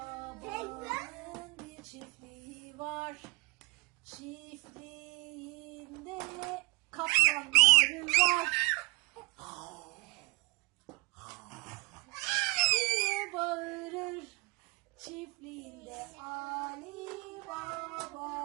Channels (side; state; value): left; quieter; 25.0 dB